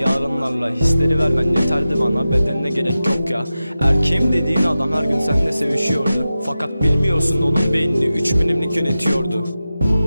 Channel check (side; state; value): both; inverted; correlation -0.93